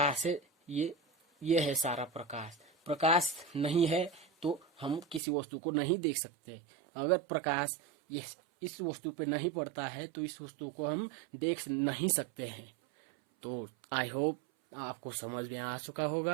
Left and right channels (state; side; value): drops out; left; at 5.2 s